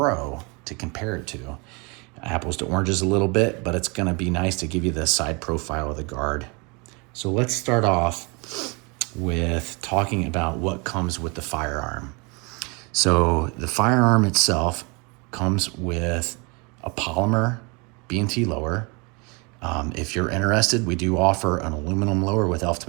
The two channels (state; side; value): quieter; left; 30.0 dB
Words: to compare it to. Apples to oranges a little bit, but it's going to be nice to give you the side profile of the guard. So let's start off with talking about what comes with the firearm. So the firearm itself comes with a polymer B&T lower. If you're interested, we do offer an aluminum lower with elf